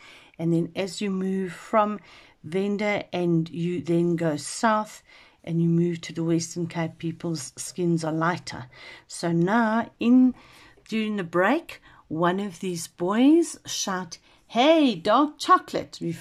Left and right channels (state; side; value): identical; both; correlation 1.00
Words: And then as you move from Venda and you then go south and you move to the Western Cape, people's skins are lighter. So now, during the break, one of these boys shout, "Hey, dark chocolate,"